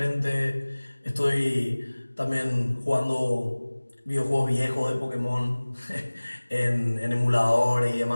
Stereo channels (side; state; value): both; inverted; correlation -1.00